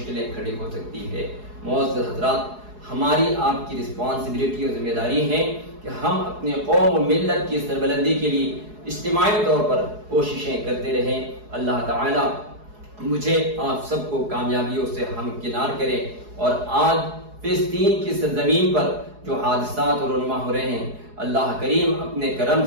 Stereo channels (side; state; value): left; late; 4.7 ms